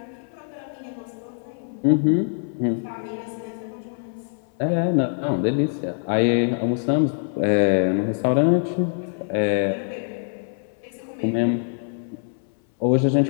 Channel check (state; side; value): silent; right; 61 dB below the other